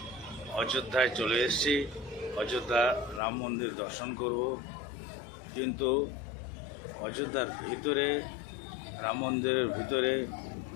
অযোধ্যায় চলে এসেছি। অযোধ্যা রাম মন্দির দর্শন করব, কিন্তু অযোধ্যার ভিতরে রাম মন্দিরের ভিতরে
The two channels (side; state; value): right; drops out; at 3.2 s